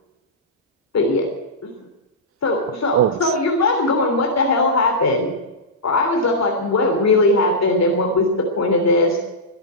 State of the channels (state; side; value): normal; both; correlation -0.14